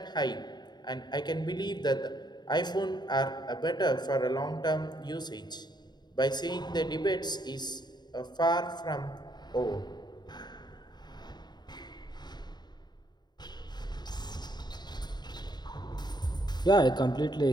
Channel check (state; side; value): late; right; 0.21 ms